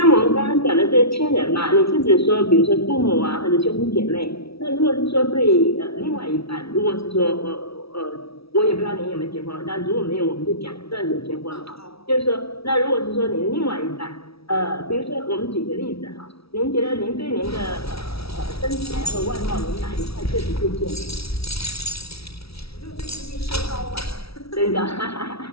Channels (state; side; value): late; right; 0.76 ms